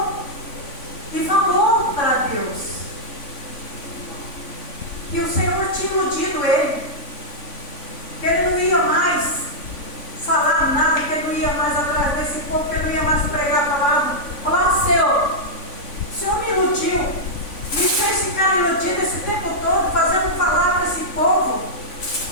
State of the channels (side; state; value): right; late; 3.5 ms